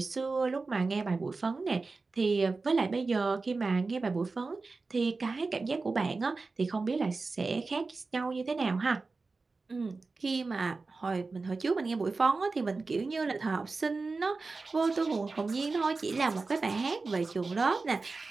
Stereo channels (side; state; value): left; quieter; 3.9 dB